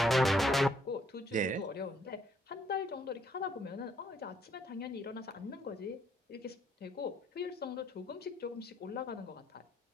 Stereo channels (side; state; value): both; normal; correlation 0.68